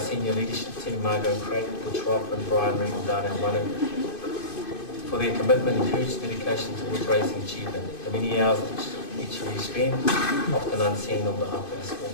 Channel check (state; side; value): late; right; 2.5 ms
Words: leadership team, Margot Craig, Butch Roth and Brian Reed and Dana Wanu, for their commitment and huge dedication towards raising achievement. The many hours each of you spend, often unseen on behalf of our school.